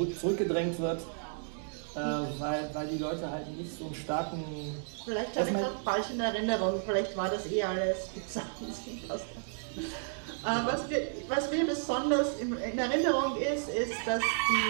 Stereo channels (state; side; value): silent; left; digital silence